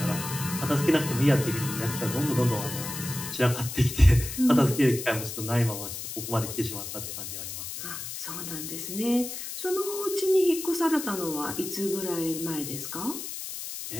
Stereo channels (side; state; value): left; noise; hiss, 7 dB below the sound